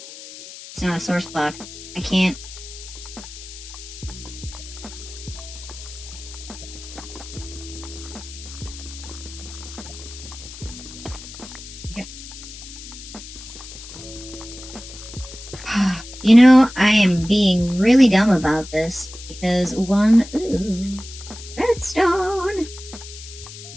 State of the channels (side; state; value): left; noise; hiss, 14 dB below the sound